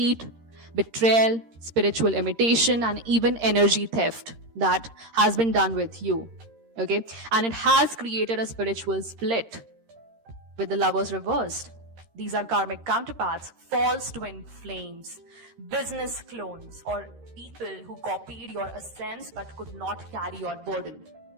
betrayal, spiritual imitation, and even energy theft that has been done with you. Okay? And it has created a spiritual split with the lovers reversed. These are karmic counterparts, false twin flames, business clones, or people who copied your essence but could not carry your burden.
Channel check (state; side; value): late; left; 13 ms